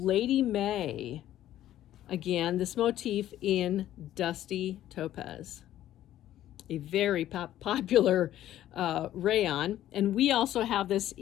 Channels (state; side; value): quieter; right; 12.8 dB